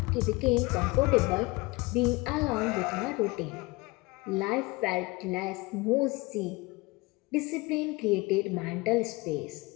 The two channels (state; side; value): quieter; right; 24.0 dB